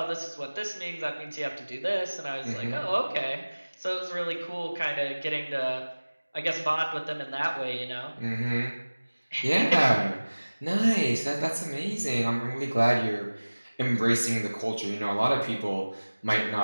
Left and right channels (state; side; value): inverted; both; correlation -1.00